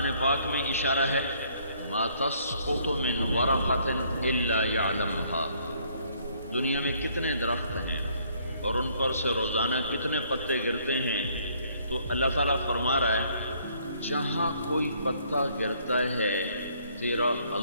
پاک میں اشارہ ہے، ما تسقط من ورقۃ الا یعلمها، دنیا میں کتنے درخت ہیں اور ان پر سے روزانہ کتنے پتے گرتے ہیں، تو اللہ تعالیٰ فرما رہا ہے جہاں کوئی پتا گرتا ہے تیرا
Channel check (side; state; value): both; inverted; correlation -0.64